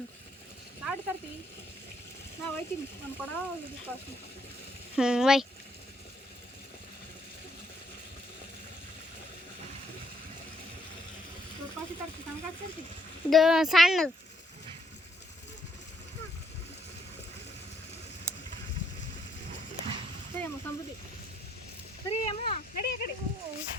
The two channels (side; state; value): both; normal; correlation 0.71